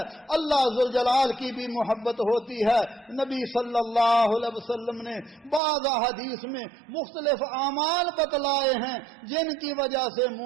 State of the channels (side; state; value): left; drops out; at 5.6 s